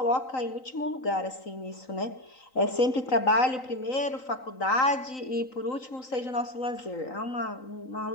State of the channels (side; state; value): right; late; 3.9 ms